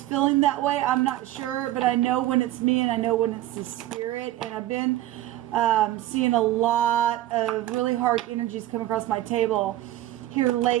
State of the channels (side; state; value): left; quieter; 14.6 dB